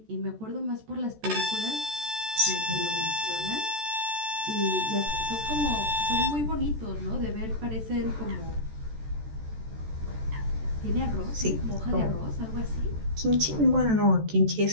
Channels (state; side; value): late; left; 14 ms